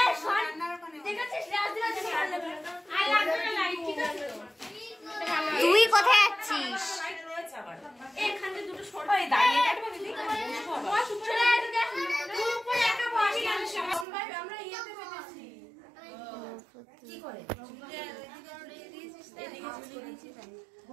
রান্নার ওখানে ঠিক আছে, রাজদিরা তুমি আলো আই লাগবে না লাইট, ঠিক আছে? তুই কোথায় যাচ্ছিস? এখানে দুটো সরো, এই দাঁড়িয়ে কাটবে দিদি, বস উপরে, তুই উপরে একা বস, সবাই আমরা ইয়েতে বসেছি। কি করে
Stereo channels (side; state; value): left; drops out; at 14.1 s